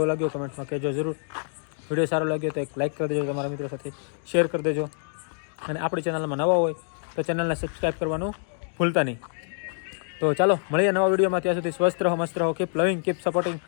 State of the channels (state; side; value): silent; right; digital silence